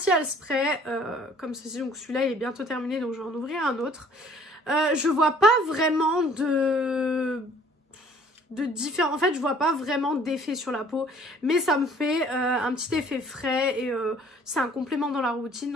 spray, comme ceci. Donc, celui-là, il est bientôt terminé, donc je vais en ouvrir un autre. Je vois pas vraiment de différents. En fait, je vois pas vraiment d'effet sur la peau, mais ça me fait un petit effet frais et c'est un complément dans la routine,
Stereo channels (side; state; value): both; normal; correlation 0.55